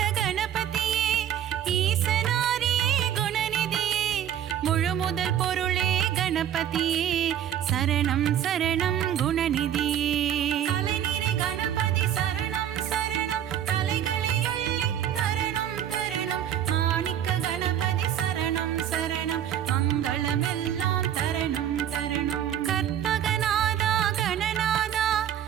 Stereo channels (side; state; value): left; quieter; 10.3 dB